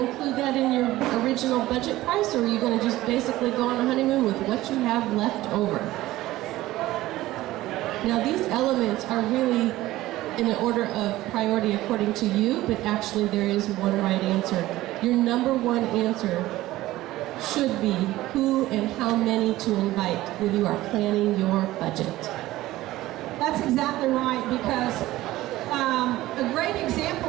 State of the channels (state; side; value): quieter; left; 16.5 dB